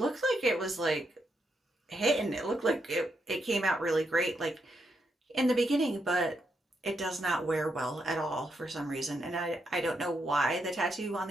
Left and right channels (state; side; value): normal; both; correlation 0.81